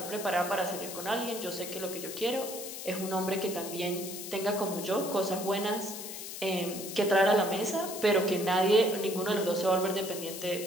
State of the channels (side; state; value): left; noise; hiss, 9 dB below the sound